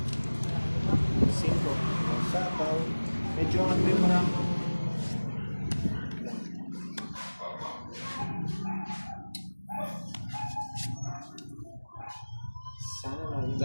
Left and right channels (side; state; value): both; inverted; correlation -1.00